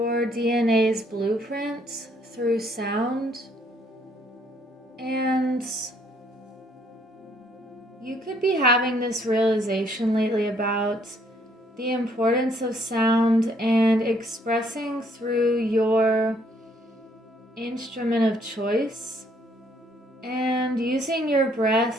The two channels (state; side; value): normal; both; correlation 0.67